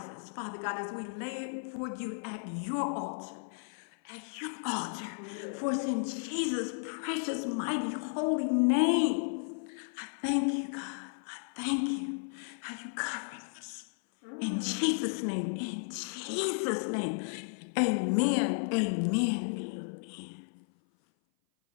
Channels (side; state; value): right; silent; 55 dB below the other